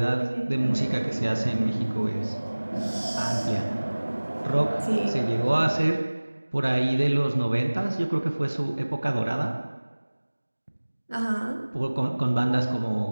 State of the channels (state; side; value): inverted; both; correlation -1.00